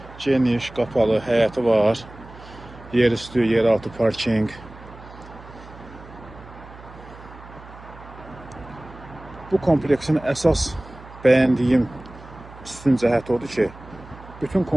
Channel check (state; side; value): noise; right; hum, 18 dB below the sound